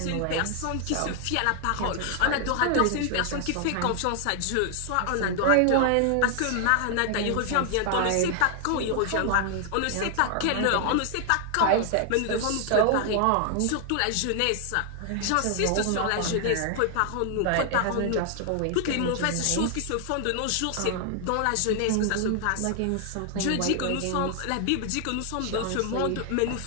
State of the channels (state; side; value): different; both; correlation 0.00